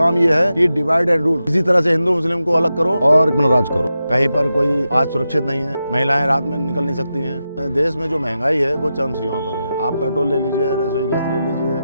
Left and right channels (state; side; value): inverted; both; correlation -0.89